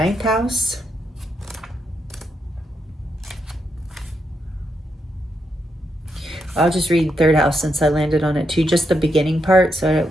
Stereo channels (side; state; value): both; normal; correlation 0.81